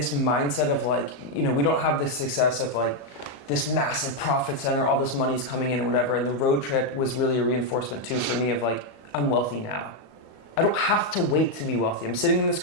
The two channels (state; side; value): late; right; 35 ms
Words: mindset of like, we don't have the success of like this massive profit center, all this money's coming in and whatever. And the road trip was really a reinforcement too for me of like, I'm wealthy now. I don't have to wait to be wealthy. I'm sitting in this